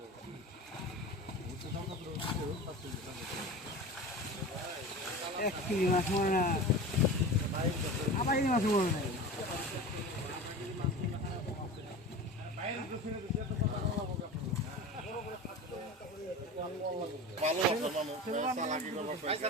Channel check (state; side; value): normal; both; correlation 0.31